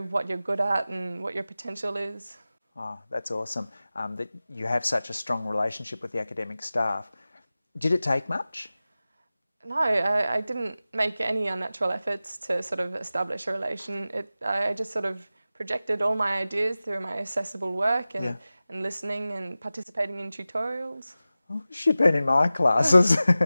what you're good at and what your potential is. Oh, that's awesome. That you have such a strong relationship with the academic staff. Did it take much? No, I didn't make any unnatural efforts to sort of establish a relation. I just sort of projected all my ideas through my accessible work and listening and participating in tutorials. Oh, she'd been in my classes.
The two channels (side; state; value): both; inverted; correlation -0.96